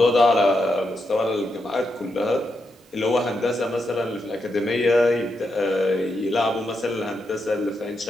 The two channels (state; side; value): normal; both; correlation 0.84